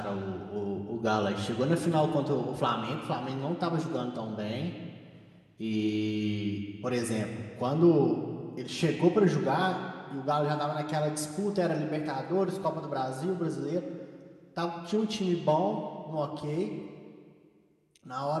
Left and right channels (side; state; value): both; identical; correlation 1.00